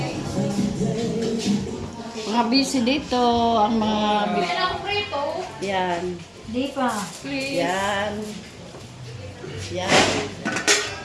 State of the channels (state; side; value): identical; both; correlation 1.00